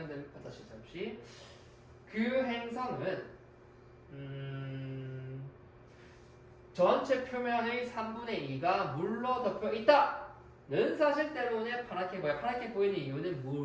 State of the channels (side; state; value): both; identical; correlation 1.00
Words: 다시 잠시. 그 행성은 전체 표면의 3분의 2가 물로 덮여 있다는 사실 때문에 파랗게 보여. 파랗게 보이는 이유는